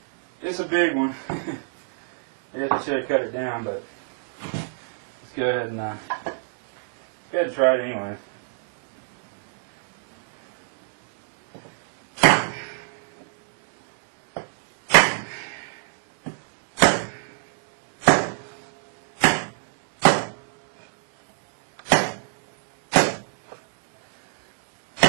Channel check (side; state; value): left; silent; digital silence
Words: It's a big one. I should have cut it down, but let's go ahead and try it anyway.